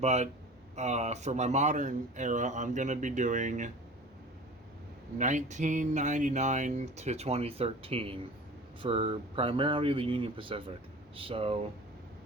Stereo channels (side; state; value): both; normal; correlation 0.39